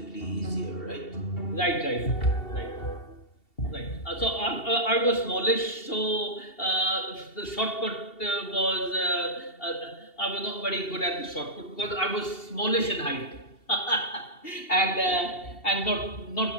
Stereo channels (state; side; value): late; right; 2.7 ms